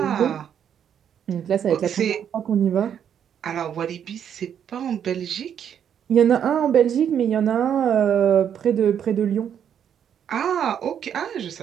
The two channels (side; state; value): left; quieter; 8.8 dB